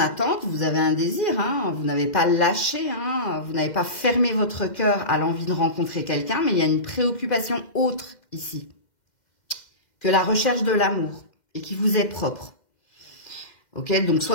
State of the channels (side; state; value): right; late; 2.1 ms